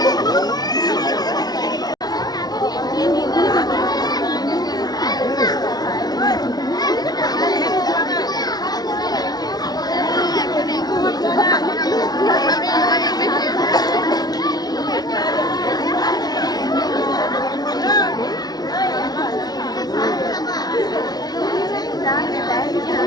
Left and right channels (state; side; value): late; right; 0.19 ms